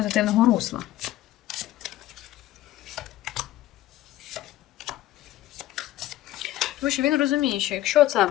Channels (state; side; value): quieter; right; 14.9 dB